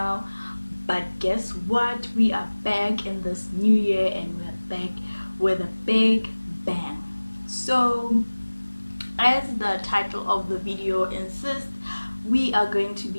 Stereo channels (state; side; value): inverted; both; correlation -1.00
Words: but guess what? We are back in this new year and we're back with a big bang. So as the title of the video insists, we are going to